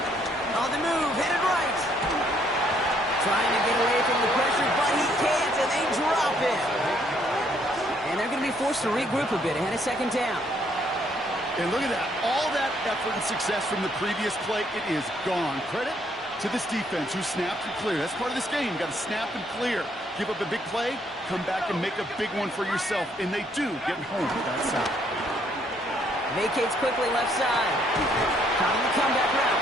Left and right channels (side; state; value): both; normal; correlation 0.68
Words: On the move, headed right. Trying to get away from the pressure, but he can't, and they drop it. And they're going to be forced to regroup a bit ahead of second down. And look at that. All that effort and success from the previous play, it is gone. Credit to this defense who snapped and cleared. That's part of this game. You got to snap and clear. Give up a big play, come back and make a big one for yourself. And they do get home with that side. Vacates quickly left side. Caught on the comeback